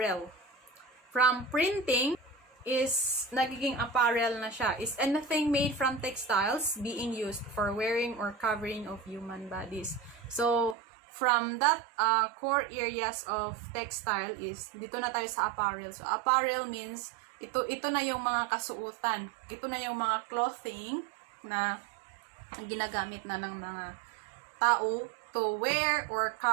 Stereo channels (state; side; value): drops out; left; at 10.8 s